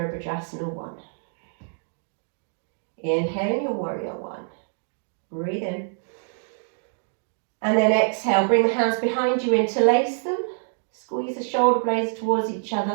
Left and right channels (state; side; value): silent; left; digital silence